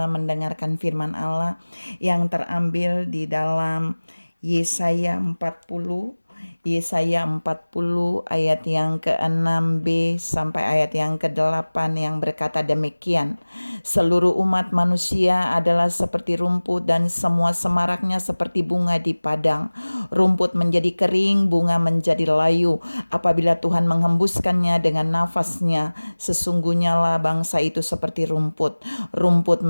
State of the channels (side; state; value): both; inverted; correlation -1.00